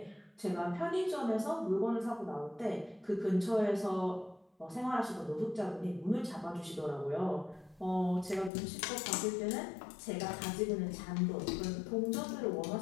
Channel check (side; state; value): right; drops out; at 8.5 s